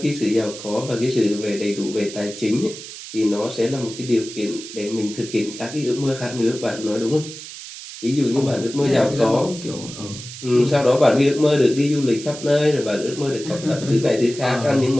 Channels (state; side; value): noise; right; hiss, 12 dB below the sound